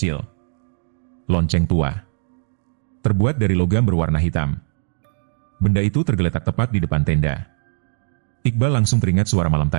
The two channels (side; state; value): left; silent; digital silence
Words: Lonceng tua. Terbuat dari logam berwarna hitam. Benda itu tergeletak tepat di depan tenda. Iqbal langsung teringat suara malam